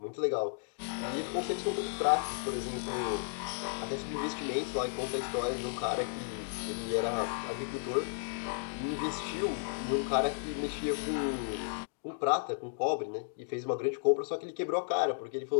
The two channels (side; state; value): right; silent; digital silence